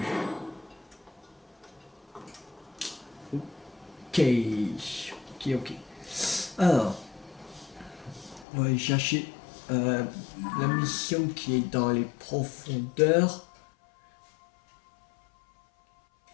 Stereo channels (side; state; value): right; drops out; at 8.5 s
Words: Ok, ok. Alors, on va aller chercher la mission qui est dans les profondeurs.